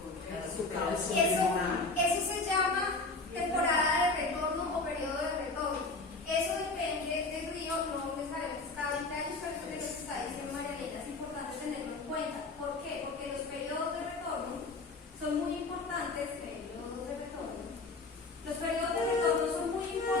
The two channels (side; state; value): right; quieter; 3.5 dB